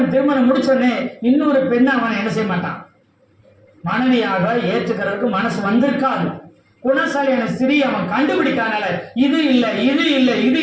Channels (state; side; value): identical; both; correlation 1.00